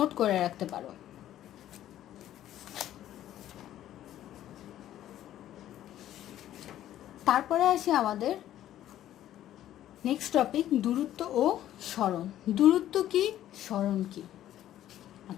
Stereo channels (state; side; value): quieter; right; 12.4 dB